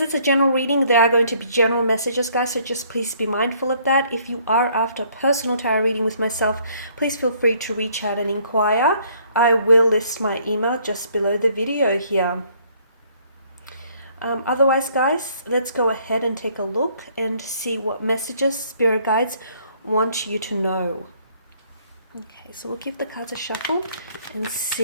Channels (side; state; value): both; inverted; correlation -0.63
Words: it's a general reading, there are going to be general messages, guys, so just please be mindful of that. If you are after a personal tarot reading with myself, please feel free to reach out and inquire. I will list my email just below the video here. Otherwise, guys, let's go ahead and take a look and see what messages spirit guides want you to know. Okay, so we'll give the cards a shuffle and